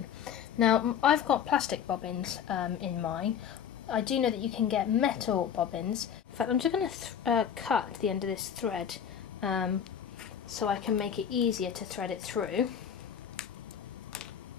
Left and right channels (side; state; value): right; quieter; 8.4 dB